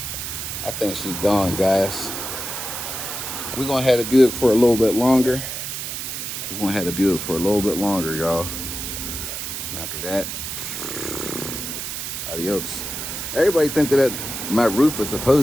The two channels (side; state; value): right; noise; hiss, 5 dB below the sound